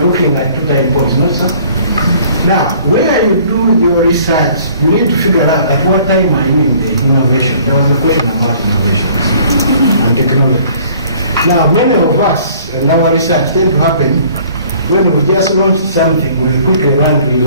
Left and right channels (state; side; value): inverted; both; correlation -0.54